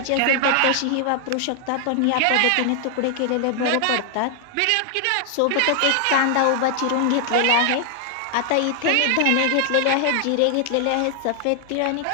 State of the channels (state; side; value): different; both; correlation 0.00